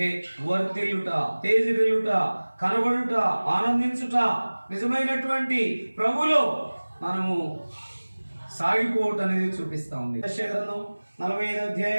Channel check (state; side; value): inverted; both; correlation -1.00